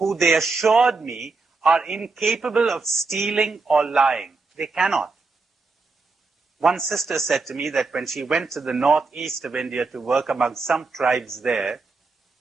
they assured me are incapable of stealing or lying. They cannot. One sister said to me that when she went to the northeast of India to work among some tribes there,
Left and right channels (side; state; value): left; quieter; 4.0 dB